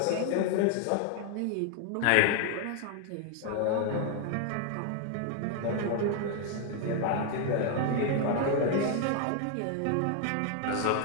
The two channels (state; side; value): different; both; correlation 0.00